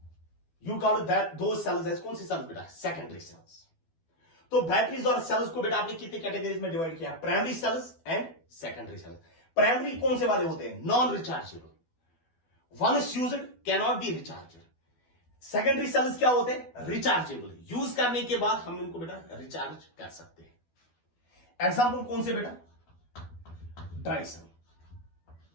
You call that those cells as कौन सी सेल्स बेटा, सेकेंडरी सेल्स। तो बैटरीज और सेल्स को बेटा आपने कितने कैटेगरीज में डिवाइड किया, primary cells and secondary cells. Primary कौन से वाले होते हैं, non rechargeable, once used can not be recharged. Secondary cells क्या होते हैं, रिचार्जेबल, यूज करने के बाद हम इनको बेटा रिचार्ज कर सकते हैं। एग्जाम्पल कौन से बेटा, ड्राई सेल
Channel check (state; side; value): late; right; 12 ms